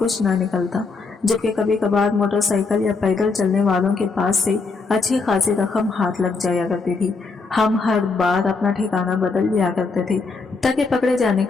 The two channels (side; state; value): right; quieter; 4.2 dB